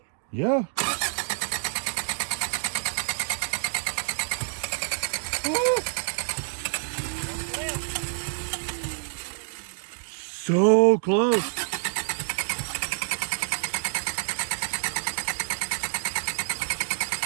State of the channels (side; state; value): left; silent; digital silence